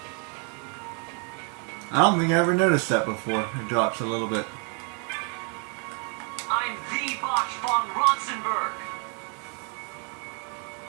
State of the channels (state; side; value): quieter; left; 37.5 dB